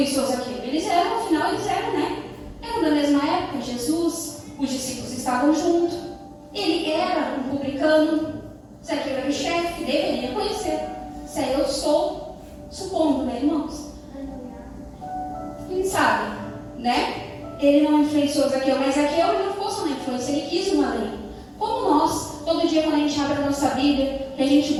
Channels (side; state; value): both; identical; correlation 1.00